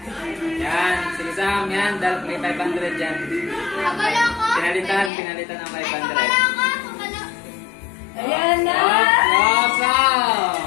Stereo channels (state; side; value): drops out; right; at 5.1 s